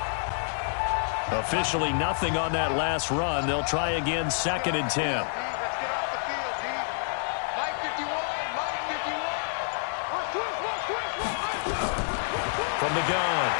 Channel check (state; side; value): silent; right; digital silence